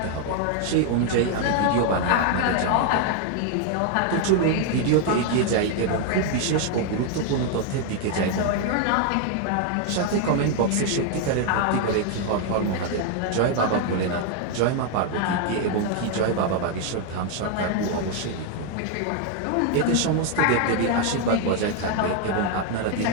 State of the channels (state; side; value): different; both; correlation 0.00